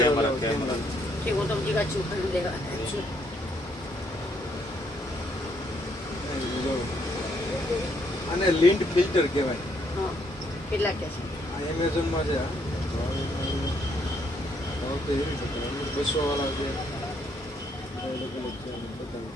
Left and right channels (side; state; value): both; normal; correlation 0.71